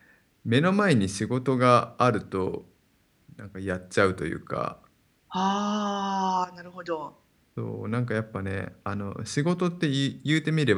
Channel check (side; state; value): both; identical; correlation 1.00